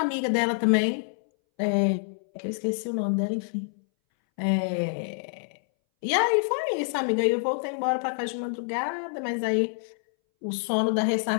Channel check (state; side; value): silent; right; 60 dB below the other